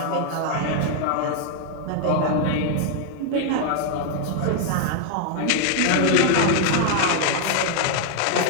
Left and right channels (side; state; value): both; different; correlation 0.00